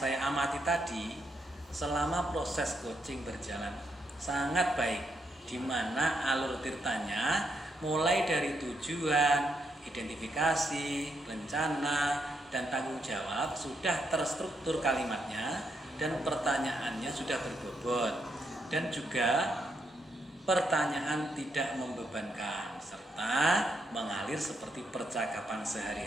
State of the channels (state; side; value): normal; both; correlation 0.79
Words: amati tadi, selama proses coaching berjalan sangat baik, di mana alur ceritanya mulai dari tujuan, identifikasi, rencana, dan tanggung jawab sudah terstruktur kalimatnya dan pertanyaannya sudah berbobot. Dan juga pertanyaan tidak membebankan serta mengalir seperti percakapan